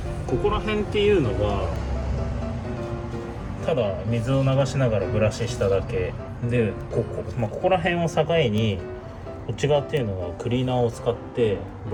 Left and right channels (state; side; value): identical; both; correlation 1.00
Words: ここら辺っていうのがただ水を流しながらブラシしただけで、ここら辺を境にこっち側っていうのはクリーナーを使って